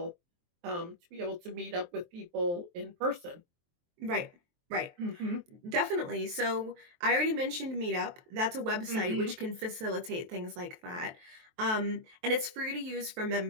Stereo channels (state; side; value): late; left; 23 ms